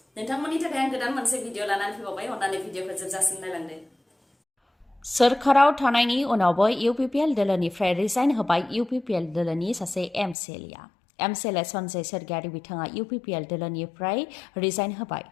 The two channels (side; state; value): right; drops out; at 10.4 s